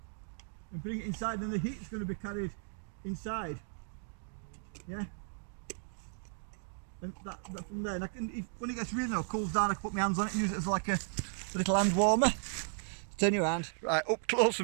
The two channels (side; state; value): left; silent; digital silence